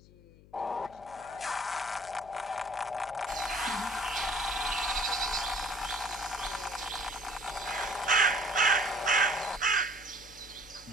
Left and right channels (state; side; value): noise; left; hum, 23 dB below the sound